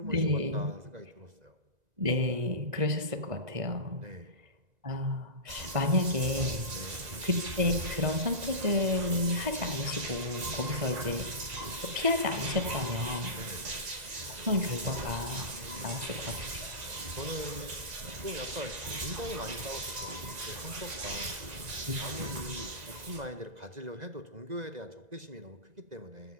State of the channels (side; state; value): left; late; 2.0 ms